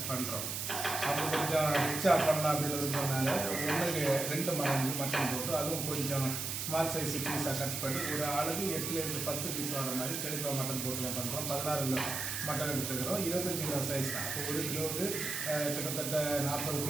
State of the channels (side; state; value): right; noise; hiss, 3 dB below the sound